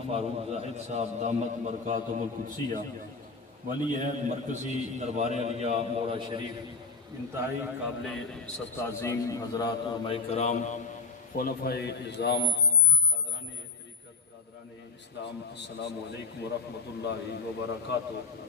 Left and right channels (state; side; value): quieter; right; 4.5 dB